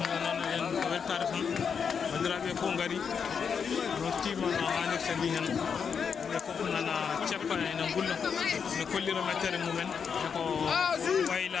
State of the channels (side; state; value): right; quieter; 6.6 dB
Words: ɗo noon en weltare tan bandiraɓe fof gari nortima no hannirta ni hen ɓe fof nana ceppa ene gulla ene kollira mettere mumen eko